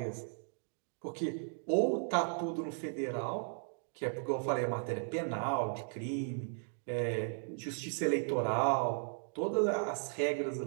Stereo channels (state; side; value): silent; left; 54 dB below the other